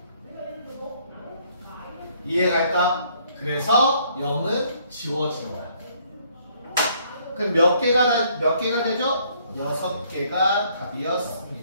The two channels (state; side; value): inverted; both; correlation -0.65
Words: 이해갈까? 그래서 0은 지워진다. 그럼 몇 개가 되죠? 6개가